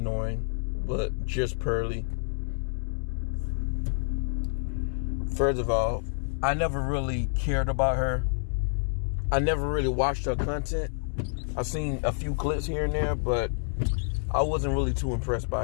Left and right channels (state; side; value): silent; right; digital silence